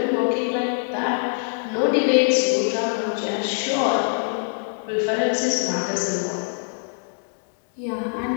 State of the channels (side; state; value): right; silent; digital silence